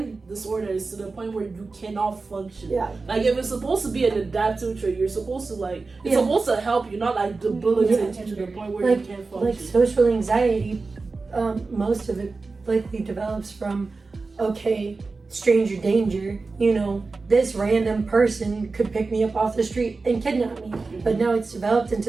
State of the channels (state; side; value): quieter; left; 4.0 dB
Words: disorder is to the point where you cannot function. Like, if it's supposed to be an adaptive trait, you're supposed to, like, it's supposed to help you, not, like, debilitate you to the point where you can't function. Like, social anxiety, most of it likely develops from, okay, stranger danger, this random person could pick me up off the street and kidnap me. But now it's developed